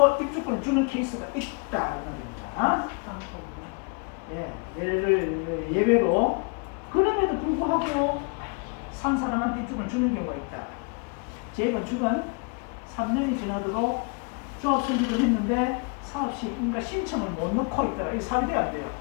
입주권을 주는 케이스가 있다. 이런 겁니다. 예, 예외로 그럼에도 불구하고 산 사람한테 입주권을 주는 경우가 있다. 재건축은 3년이 지나도록 조합 설립을 했는데 사업 시 인가 신청을 못 넣고 있더라. 이 사업이 안 돼요.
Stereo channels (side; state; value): right; quieter; 34.6 dB